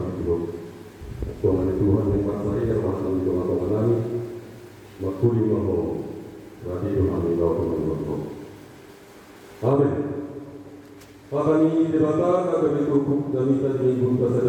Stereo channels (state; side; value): identical; both; correlation 1.00